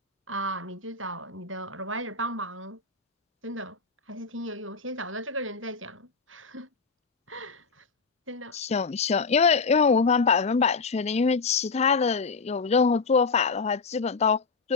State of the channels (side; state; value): right; quieter; 4.6 dB